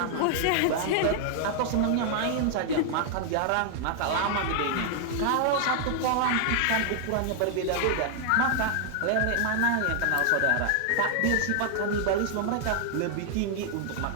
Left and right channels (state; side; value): different; both; correlation 0.00